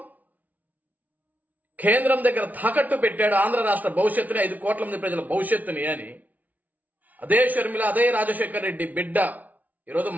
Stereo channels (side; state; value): left; late; 0.075 ms